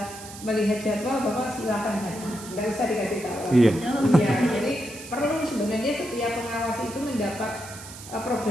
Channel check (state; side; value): noise; right; hiss, 14 dB below the sound